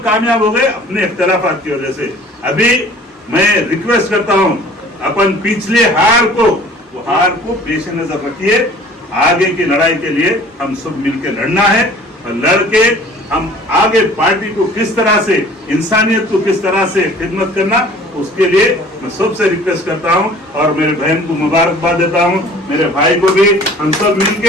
कामयाब हो गए अपने इख्तिलाफात की वजह से। अभी मैं रिक्वेस्ट करता हूँ, अपन पिछले हार को पेश नजर रखिए, आगे की लड़ाई के लिए हम सब मिलकर लड़ना है, और लड़के हम आगे पार्टी को किस तरह से, इंसानियत को किस तरह से खिदमत करना, उसके लिए मैं सबसे रिक्वेस्ट करता हूं और मेरे बहन को मुबारकबाद देता हूं, मेरे भाई को भी। हम सब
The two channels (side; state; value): both; normal; correlation 0.49